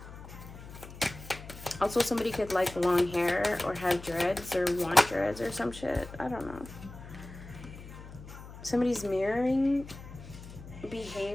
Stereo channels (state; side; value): noise; left; hum, 14 dB below the sound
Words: Also, somebody could like long hair or have dreads or want dreads or some shit. I don't know. Somebody's mirroring